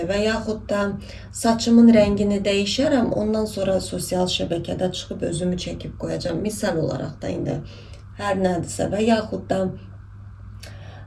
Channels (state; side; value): identical; both; correlation 1.00